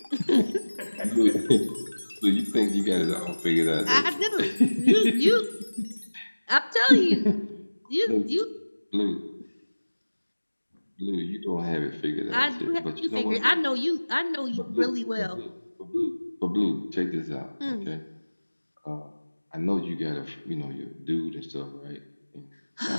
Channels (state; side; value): inverted; both; correlation -1.00